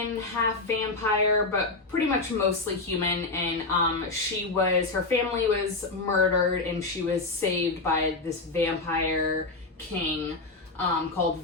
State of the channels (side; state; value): right; quieter; 3.4 dB